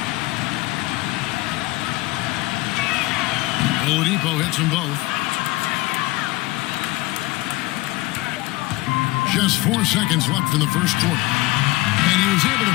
Oladipo hits them both. Just 4 seconds left in the first quarter. And he was able to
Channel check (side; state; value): right; quieter; 20.1 dB